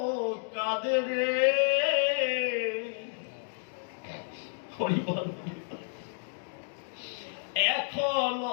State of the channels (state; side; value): silent; right; digital silence